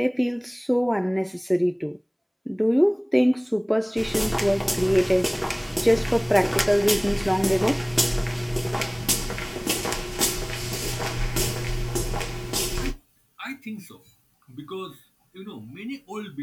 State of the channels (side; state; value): both; identical; correlation 1.00